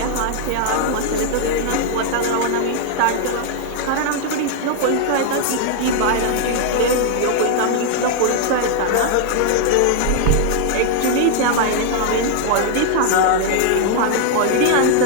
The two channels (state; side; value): different; both; correlation 0.00